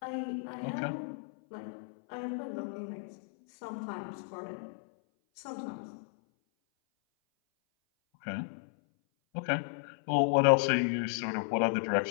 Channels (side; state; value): right; silent; 56 dB below the other